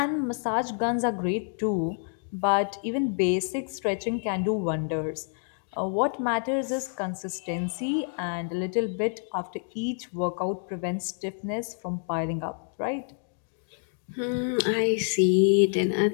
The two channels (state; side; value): silent; right; 59 dB below the other